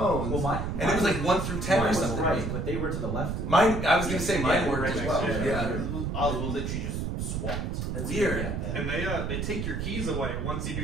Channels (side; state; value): right; noise; rumble, 2 dB below the sound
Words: Well, and it was 1 through 10 or something. Right, but they were to the left. Mine, I was going to say mine worked as well. Yeah. Ours will literally just swapped. That's weird. And they take your keys away once you